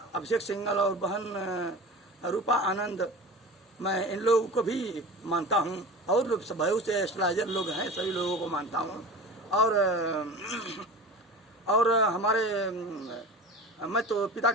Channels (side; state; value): both; normal; correlation 0.34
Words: सिंघल और बहन रूपा आनंद, मैं इन लोगों को भी मानता हूँ और बहुत से एस्ट्रोलॉजर लोग हैं, सभी लोगों को मानता हूँ। और हमारे मैं तो पिता